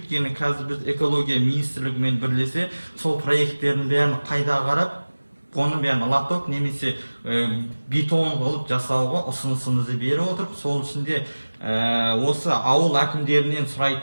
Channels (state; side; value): inverted; both; correlation -1.00